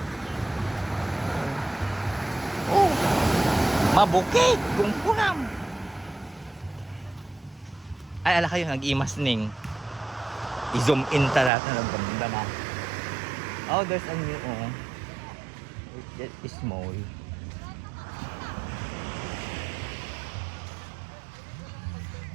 Oh. Mabukit. Kungkunam. Ay, ala kayo, nag-imas, Ning. I-zoom in talaga ng ganda na. Oh, there's a new, oh. It's small.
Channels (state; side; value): drops out; left; at 11.5 s